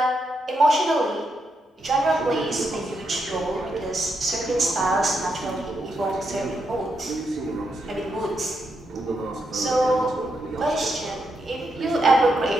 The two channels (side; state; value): both; normal; correlation 0.82